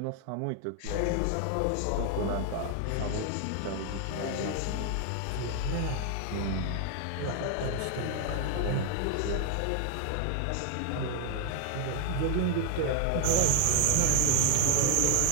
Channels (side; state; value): both; different; correlation 0.01